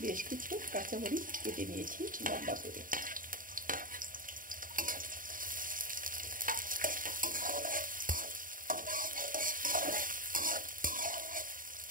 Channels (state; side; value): late; left; 0.40 ms